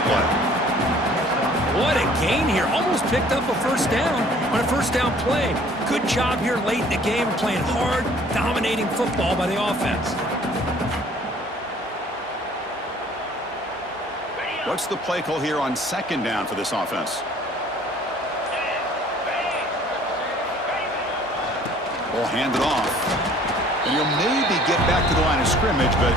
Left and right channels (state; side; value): normal; both; correlation 0.55